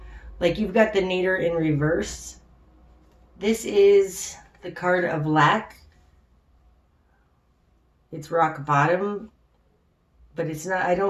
Like you've got the Nadir in reverse. This is the card of lack. It's rock bottom, but it's not, I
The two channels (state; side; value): identical; both; correlation 1.00